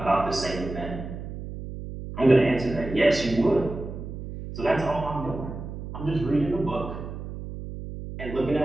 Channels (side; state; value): right; noise; hum, 9 dB below the sound